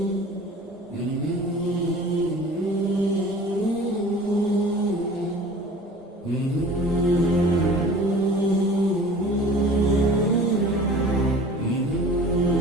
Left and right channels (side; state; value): both; normal; correlation 0.44